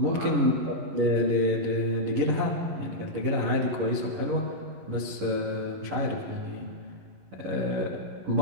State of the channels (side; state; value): left; late; 11 ms